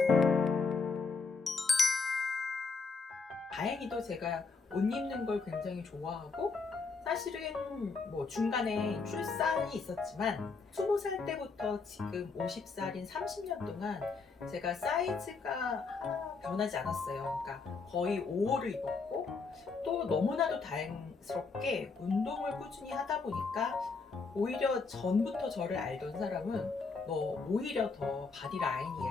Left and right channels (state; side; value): quieter; right; 4.5 dB